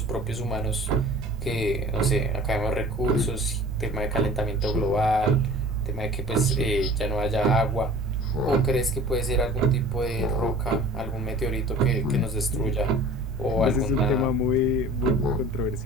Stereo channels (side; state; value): both; normal; correlation 0.44